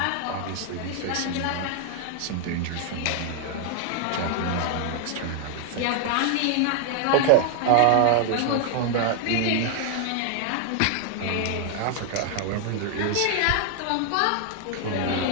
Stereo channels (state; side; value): different; both; correlation 0.00